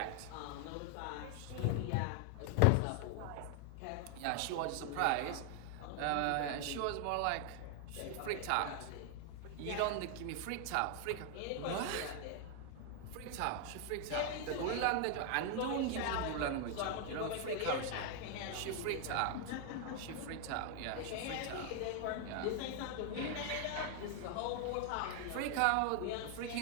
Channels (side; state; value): both; different; correlation 0.00